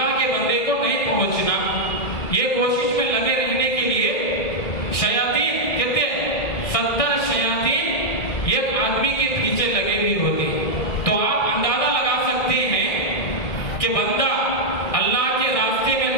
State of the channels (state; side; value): late; right; 1.6 ms